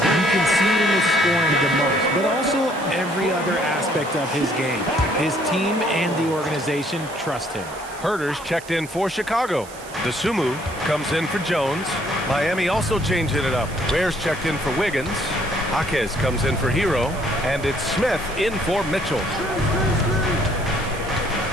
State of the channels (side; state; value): right; noise; hiss, 18 dB below the sound